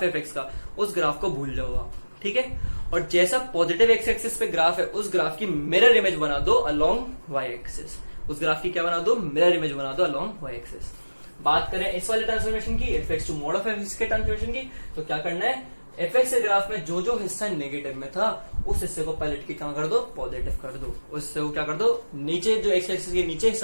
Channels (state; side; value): inverted; both; correlation -1.00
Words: है एफ एक्स का, उस ग्राफ को भूल जाओ आप। ठीक है, और जैसा पॉजिटिव एक्स एक्सिस पे ग्राफ है, उस ग्राफ की मिरर इमेज बना दो अलोंग वाई एक्सिस। उस ग्राफ की क्या बना दो, मिरर इमेज बना दो अलोंग वाई एक्सिस। बात करें इस वाले ट्रांसफॉर्मेशन की, f x to mod of f x के ट्रांसफॉर्मेशन की, तो क्या करना है, एफ एक्स के ग्राफ में जो हिस्सा नेगेटिव में था, उस हिस्से को पलट के क्या कर दो, पॉजिटिव कर दो। उस हिस्से को क्या कर दो, नीचे जो एक्स एक्सिस के नीचे